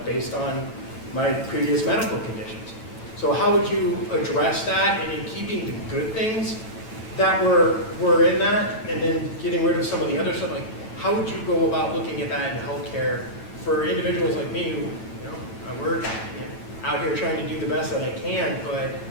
based on my previous medical conditions. So how would you address that, and in keeping the good things that were in that, and then getting rid of some of the other stuff? Like, how would you go about looking at that in healthcare for individuals like me who, I work out here trying to do the best that I can, but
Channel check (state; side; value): late; right; 9.0 ms